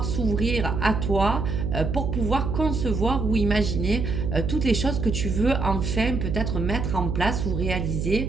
s'ouvrir à toi pour pouvoir concevoir ou imaginer toutes les choses que tu veux enfin peut-être mettre en place ou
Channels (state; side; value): noise; right; hum, 2 dB below the sound